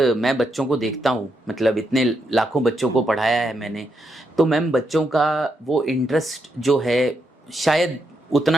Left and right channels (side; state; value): both; normal; correlation 0.80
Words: मैं बच्चों को देखता हूँ, मतलब इतने लाखों बच्चों को पढ़ाया है मैंने, तो मैम बच्चों का वो इंटरेस्ट जो है शायद